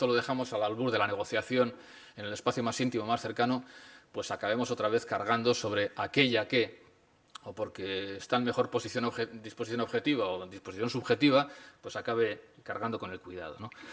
lo dejamos al albur de la negociación en el espacio más íntimo, más cercano, pues acabemos otra vez cargando sobre aquella que, o porque está en mejor disposición objetiva o en disposición subjetiva, pues acabe cargando con el cuidado, ¿no?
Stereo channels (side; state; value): both; identical; correlation 1.00